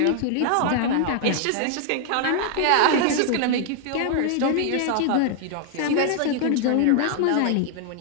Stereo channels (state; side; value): different; both; correlation 0.00